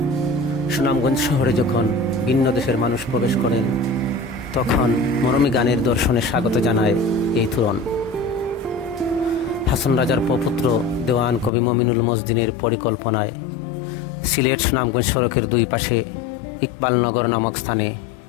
সুনামগঞ্জ শহরে যখন ভিন্ন দেশের মানুষ প্রবেশ করেন, তখন মরমী গানের দর্শনে স্বাগত জানায় এই তোরণ। হাসন রাজার প্রপুত্র দেওয়ান কবি মমিনুল মজদিনের পরিকল্পনায় সিলেট সুনামগঞ্জ সড়কের দুই পাশে ইকবালনগর নামক স্থানে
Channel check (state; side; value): drops out; right; at 11.5 s